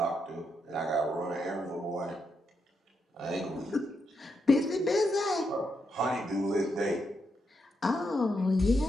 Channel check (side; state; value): both; normal; correlation 0.81